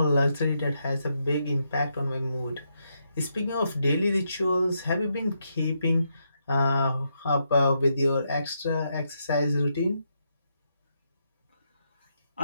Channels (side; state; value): both; inverted; correlation -0.80